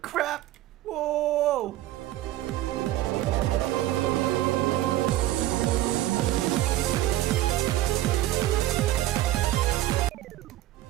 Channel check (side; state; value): left; quieter; 14.9 dB